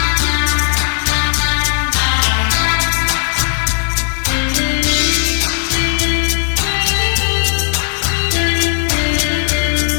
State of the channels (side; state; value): right; silent; 68 dB below the other